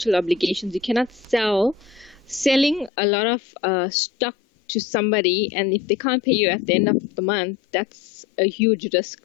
obligations. You cannot selling a lot of stock to somebody, and if they can't pay you at the end of the month, that's a huge risk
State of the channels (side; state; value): right; drops out; at 2.9 s